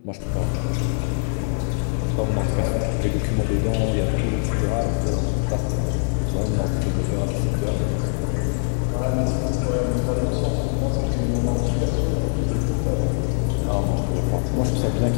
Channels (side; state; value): right; silent; 59 dB below the other